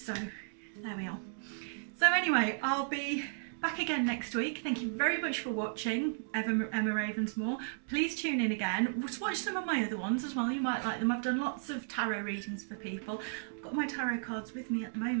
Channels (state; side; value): silent; left; digital silence